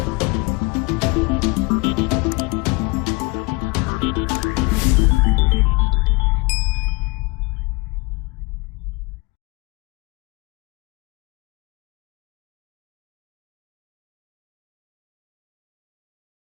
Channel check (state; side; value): quieter; right; 25.8 dB